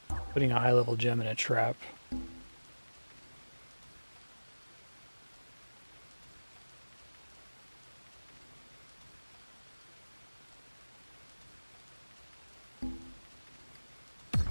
putting a high-level gem in a trap.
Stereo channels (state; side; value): inverted; both; correlation -1.00